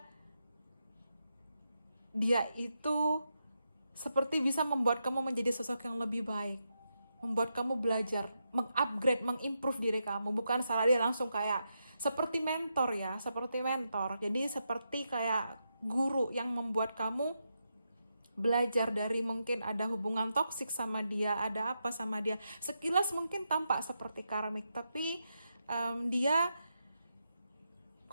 dia itu seperti bisa membuat kamu menjadi sosok yang lebih baik, membuat kamu belajar, mengupgrade, mengimprove diri kamu. Bukan salah dia langsung kayak seperti mentor ya, seperti mentor. Jadi seperti kayak guru yang membuat kamu belajar dari mungkin ada hubungan toksik sama dia, ada apa sama dia. Sekilas mungkin tampak seperti karmik, tapi dia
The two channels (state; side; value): inverted; both; correlation -0.85